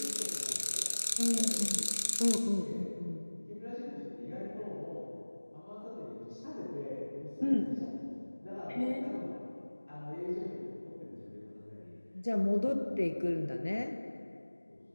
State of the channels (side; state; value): both; inverted; correlation -1.00